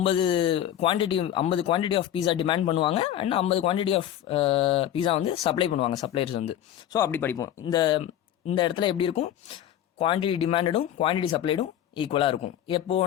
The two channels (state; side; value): quieter; right; 11.2 dB